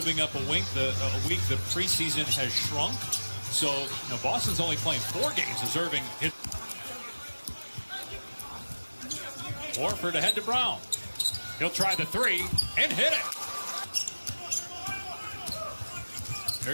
up a week, the preseason has shrunk. So, Boston's only playing 4 games as Irving hit. Horford ahead to Brown. He'll try the three and hit it.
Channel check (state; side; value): inverted; both; correlation -1.00